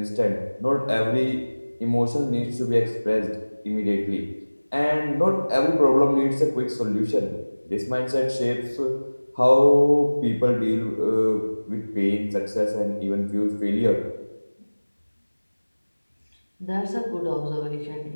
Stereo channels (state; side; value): inverted; both; correlation -1.00